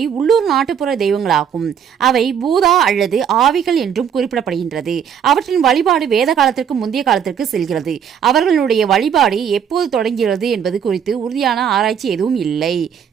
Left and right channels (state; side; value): quieter; left; 8.1 dB